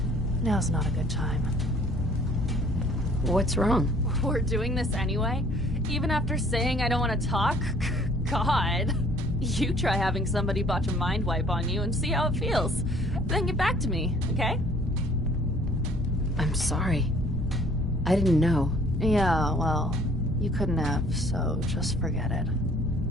Now's not a good time. What's wrong? We're doing this anyway? Even after saying I don't want to talk? God. You try having somebody botch a mind wipe on you and see how it feels. Then get back to me, okay? I'm sorry. I didn't know. Yeah, well, you couldn't have, so just forget it.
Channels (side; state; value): both; normal; correlation 0.56